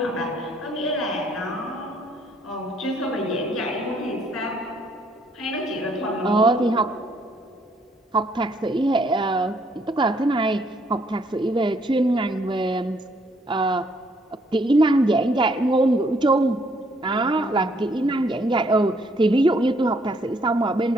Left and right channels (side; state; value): both; normal; correlation 0.68